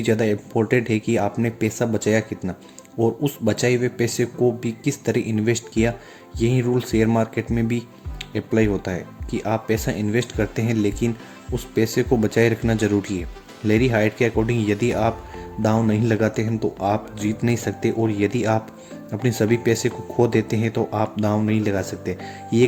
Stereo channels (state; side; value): identical; both; correlation 1.00